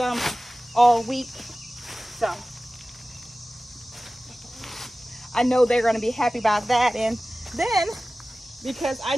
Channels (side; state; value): both; normal; correlation 0.96